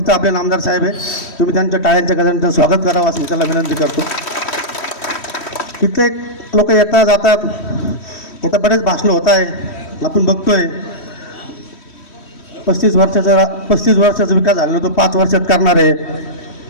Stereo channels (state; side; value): late; right; 3.1 ms